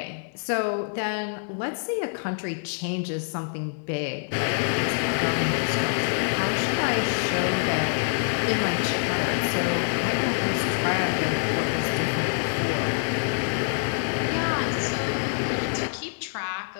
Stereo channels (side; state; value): right; silent; 61 dB below the other